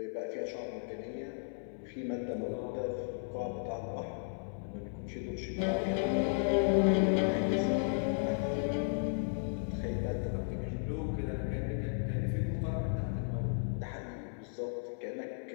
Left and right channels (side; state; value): right; silent; 54 dB below the other